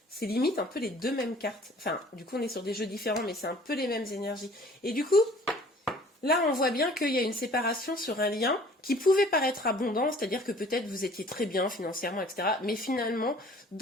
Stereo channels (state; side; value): normal; both; correlation 0.52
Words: c'est limite un peu les deux mêmes cartes. Enfin, du coup, on est sur des jeux différents, mais c'est un peu les mêmes énergies. Et du coup, là, on voit bien qu'il y a une séparation sur un lien qui pouvait paraître abondant, c'est-à-dire que peut-être vous étiez très bien financièrement, etc. Mais finalement,